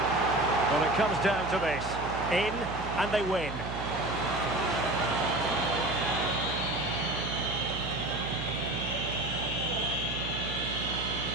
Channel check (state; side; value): noise; right; hum, 8 dB below the sound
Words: Well, it comes down to this. In, and they win.